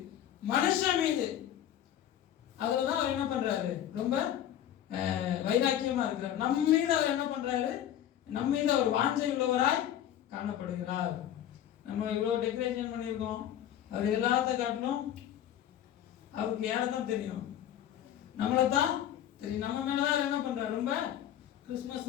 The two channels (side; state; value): right; quieter; 11.1 dB